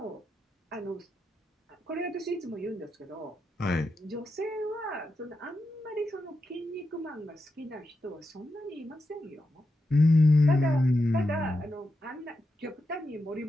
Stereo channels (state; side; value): normal; both; correlation 0.87